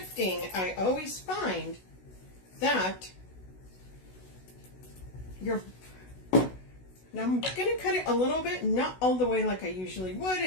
I always find that you're... Now I'm going to cut it a little bit, not all the way like I usually would,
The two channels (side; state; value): right; late; 16 ms